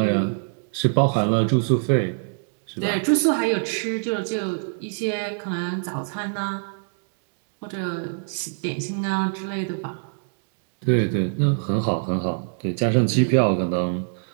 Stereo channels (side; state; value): left; silent; digital silence